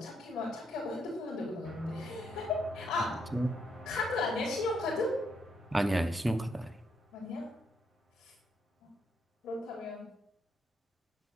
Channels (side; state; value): both; normal; correlation 0.77